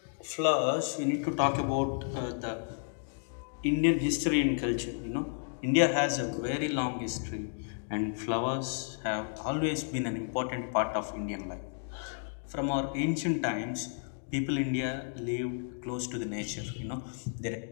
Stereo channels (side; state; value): right; silent; digital silence